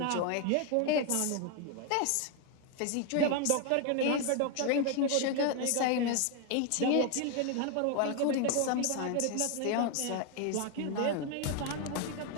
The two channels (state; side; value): different; both; correlation 0.01